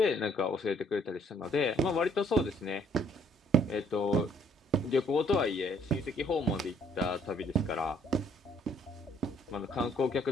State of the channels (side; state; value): both; normal; correlation 0.63